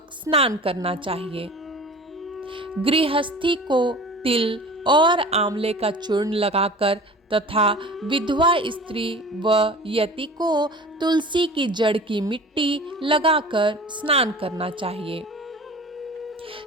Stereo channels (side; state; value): both; normal; correlation 0.40